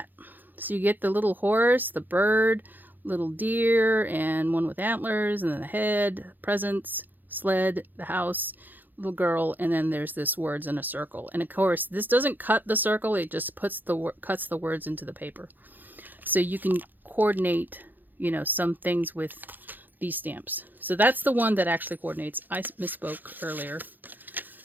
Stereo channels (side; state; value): left; late; 0.087 ms